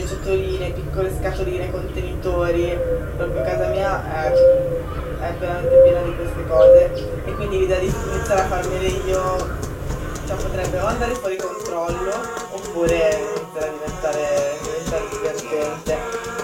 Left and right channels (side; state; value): both; identical; correlation 1.00